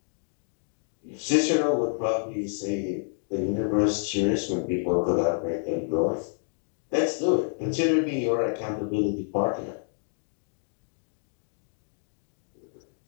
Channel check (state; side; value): silent; right; digital silence